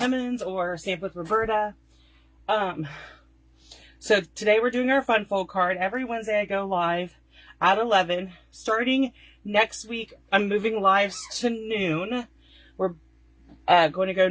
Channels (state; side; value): identical; both; correlation 1.00